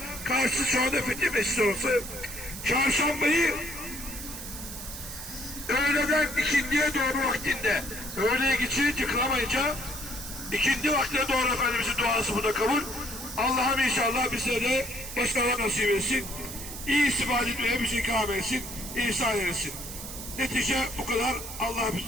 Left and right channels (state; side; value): noise; right; hiss, 10 dB below the sound